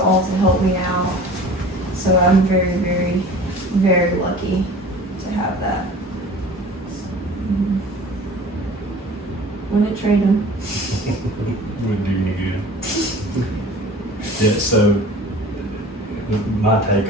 to help me out. So I'm very, very, very lucky to have that. Wouldn't trade him. Wouldn't do any good. Yeah, so my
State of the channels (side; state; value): both; normal; correlation 0.42